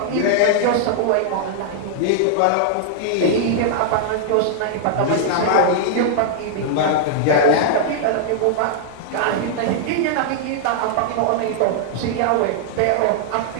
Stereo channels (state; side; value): different; both; correlation -0.01